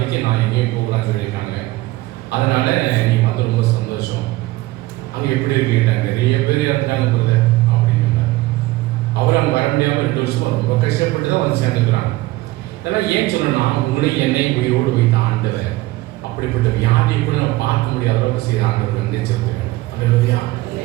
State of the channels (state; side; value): quieter; left; 18.8 dB